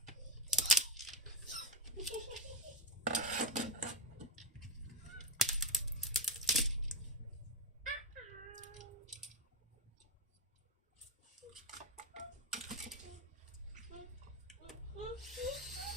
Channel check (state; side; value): normal; both; correlation 0.10